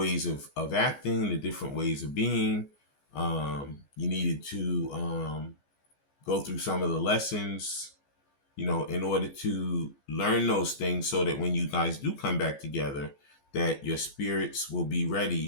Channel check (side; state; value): right; late; 14 ms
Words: of acting, the different ways of being. You needed to go through some of the lessons, in order to learn those things so that when you guys do come back together, that your spirits will be